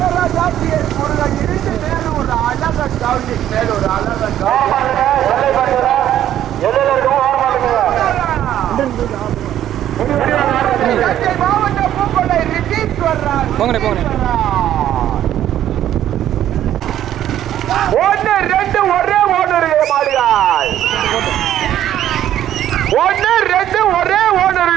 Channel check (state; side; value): quieter; left; 11.6 dB